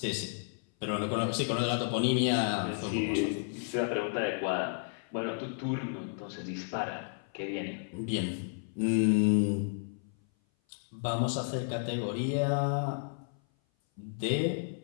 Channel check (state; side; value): silent; right; 56 dB below the other